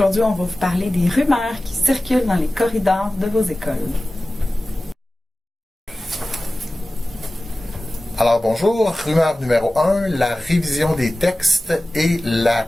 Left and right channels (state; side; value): normal; both; correlation 0.96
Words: on va vous parler des rumeurs qui circulent dans les corridors de vos écoles. Alors bonjour, rumeur numéro 1, la révision des textes et la